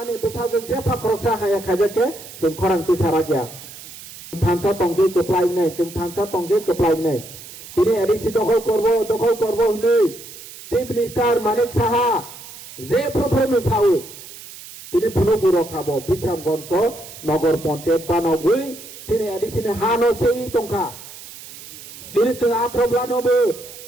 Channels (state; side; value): noise; right; hiss, 15 dB below the sound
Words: besajeng jepa kroksa haya khajake sung koran tisara kya thansa tongge keplai nai sung thansa tongge keplai nai তিনি ADC দখল করব হলে chief minister Manik Saha যে প্রফেমে সাউ তিনি পুনঃ রখাবো বিশ্রামগঞ্জ নগর পঞ্চায়েত বানাবই তিনি ADC হানো সেই টঙ্কা তিনি আত্রবলানবো